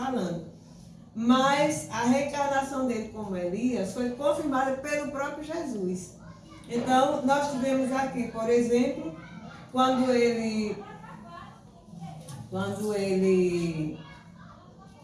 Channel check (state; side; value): identical; both; correlation 1.00